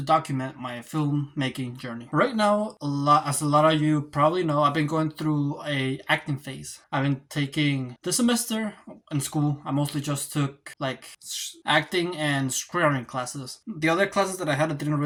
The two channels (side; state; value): both; identical; correlation 1.00